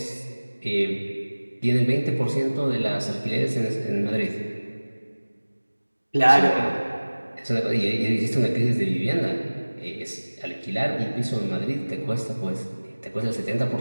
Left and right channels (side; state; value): both; inverted; correlation -1.00